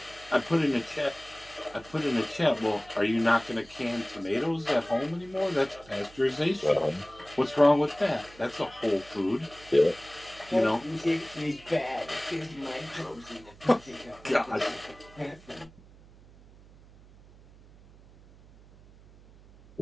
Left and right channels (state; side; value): noise; right; hum, 23 dB below the sound